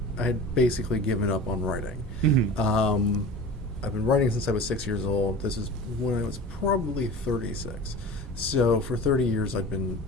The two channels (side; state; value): both; normal; correlation 0.36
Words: I had basically given up on writing. Mm-hmm. I've been writing since I was 6 years old. This is when I was probably 36. So for 30 years I'd been